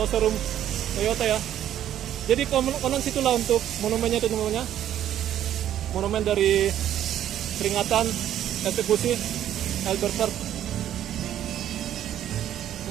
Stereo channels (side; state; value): left; quieter; 11.3 dB